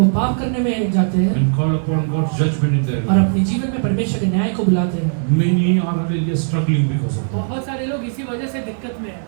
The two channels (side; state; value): left; silent; digital silence